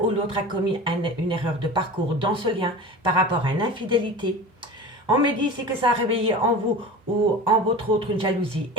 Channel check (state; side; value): normal; both; correlation 0.34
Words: l'autre a commis une erreur de parcours dans ce lien par rapport à une infidélité. On me dit ici que ça a réveillé en vous ou en votre autre une jalousie